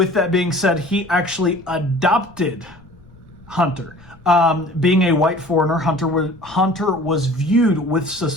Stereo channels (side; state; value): left; noise; rumble, 27 dB below the sound